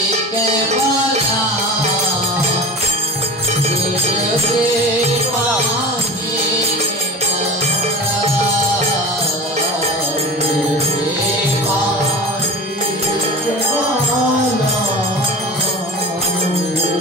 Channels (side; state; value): both; normal; correlation 0.33